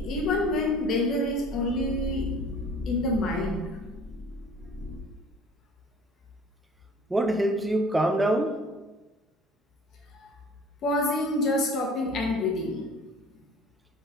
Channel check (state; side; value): normal; both; correlation 0.47